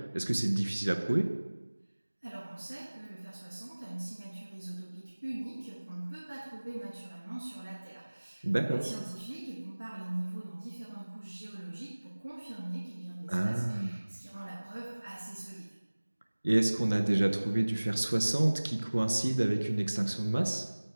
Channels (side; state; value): both; inverted; correlation -1.00